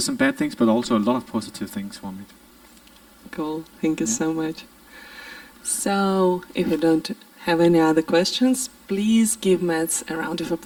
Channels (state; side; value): identical; both; correlation 1.00